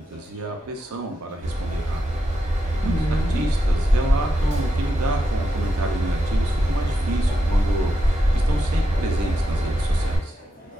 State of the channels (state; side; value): normal; both; correlation 0.85